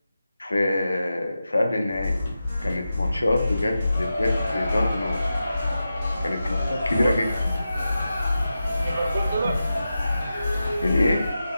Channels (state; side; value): inverted; both; correlation -0.91